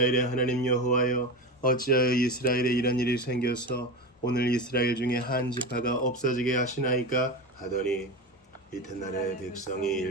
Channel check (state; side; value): normal; both; correlation 0.22